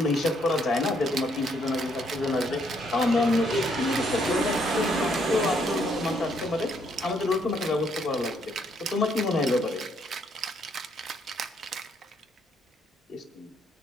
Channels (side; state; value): both; normal; correlation 0.71